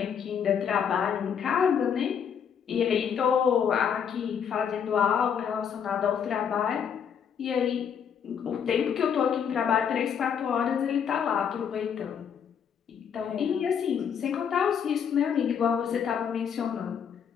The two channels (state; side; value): quieter; right; 7.7 dB